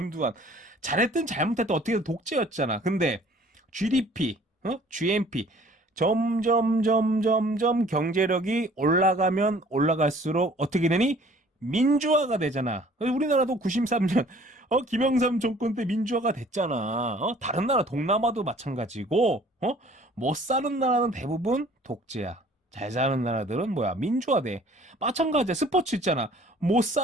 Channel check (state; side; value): normal; both; correlation 0.53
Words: 잘했든 잘못했든 어떻게든 독재였잖아. 근데 GDP, GNP 점점 경제력이 올라가면 올라갈수록 어떻게 되니? 민주화가 되잖아. 우리나라도 93년 김영삼 정권 때 민주화가 됐잖아. 다른 나라 동남아도 마찬가지고 못 사는 나라는 대부분 독재야. 잘 사는 나라들은 뭐야? 민주화돼. 마찬가지야. 스포츠 있잖아. 못